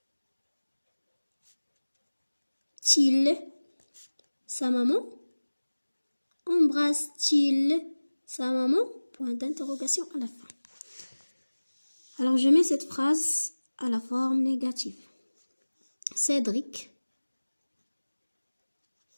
sa maman? Embrasse-t-il sa maman? Point d'interrogation à la fin. Alors, je mets cette phrase à la forme négative. Cédric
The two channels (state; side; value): inverted; both; correlation -1.00